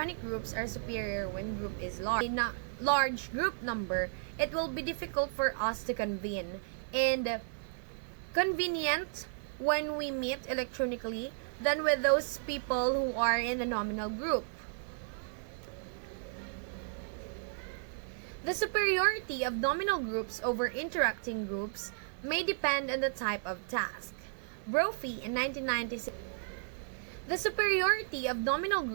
groups are superior when group is large. In a large group number, it will be difficult for us to convene and convenient when we meet electronically, than with those people who are in the nominal group. The superiority of nominal groups over interacting groups may depend on the type of task. Brophy in 1996. The superiority of nominal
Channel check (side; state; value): left; silent; digital silence